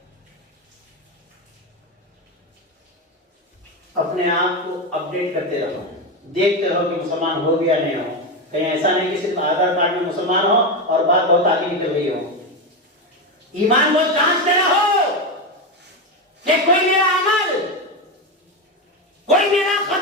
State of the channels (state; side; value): normal; both; correlation 0.13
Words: अपने आप को अपडेट करते रहो, देखते रहो कि मुसलमान हो गया नहीं हो। कहीं ऐसा नहीं कि सिर्फ आधार कार्ड में मुसलमान हो और बात बहुत आगे निकल गई हो। ईमान को जांचते रहो कि कोई मेरा अमल, कोई मेरा